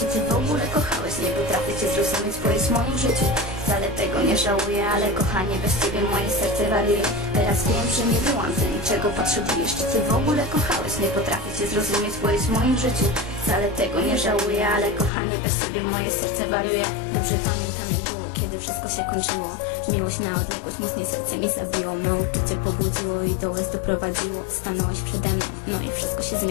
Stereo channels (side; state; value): right; drops out; at 15.1 s